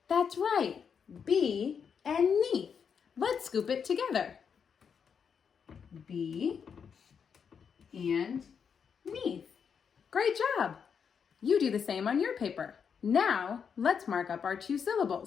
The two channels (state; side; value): quieter; right; 6.8 dB